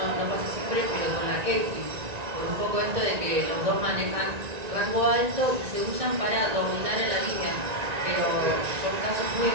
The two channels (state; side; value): late; left; 1.9 ms